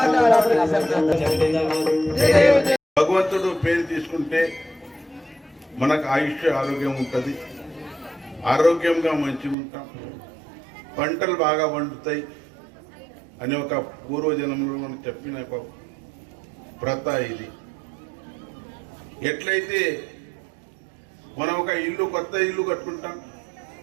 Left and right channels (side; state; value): left; drops out; at 9.6 s